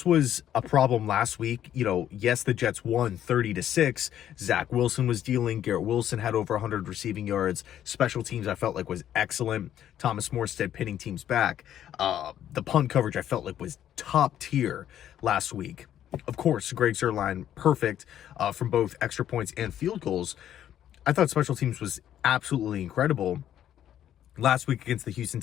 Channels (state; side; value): quieter; right; 10.9 dB